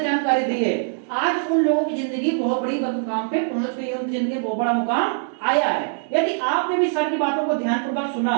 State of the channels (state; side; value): silent; left; digital silence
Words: जानकारी दी है, आज उन लोगों की जिंदगी बहुत बड़ी मुकाम पे पहुंच गई है, उनकी जिंदगी बहुत बड़ा मुकाम आया है। यदि आपने भी सर की बातों को ध्यानपूर्वक सुना,